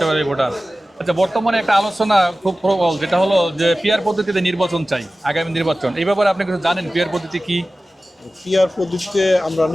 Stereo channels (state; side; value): normal; both; correlation 0.96